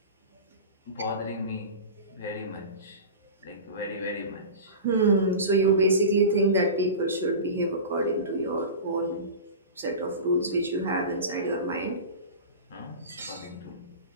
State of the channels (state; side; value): inverted; both; correlation -0.31